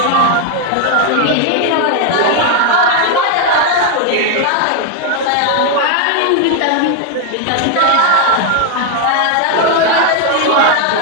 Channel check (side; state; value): both; different; correlation 0.00